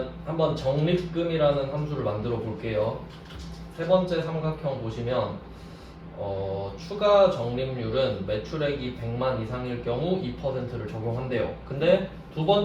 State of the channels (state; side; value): identical; both; correlation 1.00